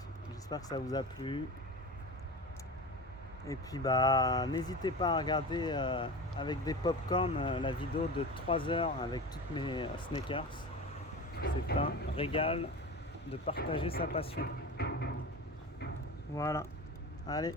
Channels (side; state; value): both; normal; correlation 0.30